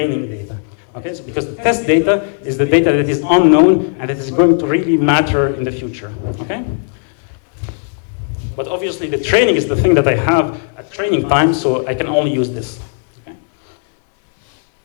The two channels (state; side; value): silent; right; 57 dB below the other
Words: data. Okay? So because the test data is the data that is unknown and that is going to really matter in the future. Okay? But obviously the training is the thing that I have at training time, so I can only use this.